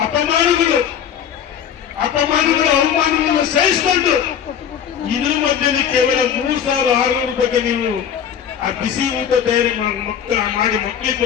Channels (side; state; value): right; quieter; 8.7 dB